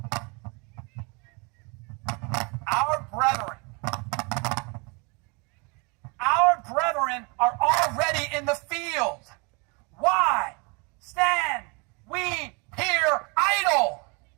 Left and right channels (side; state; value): left; quieter; 31.0 dB